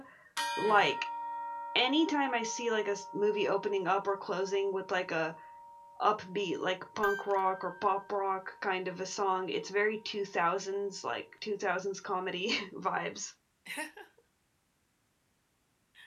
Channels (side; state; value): both; identical; correlation 1.00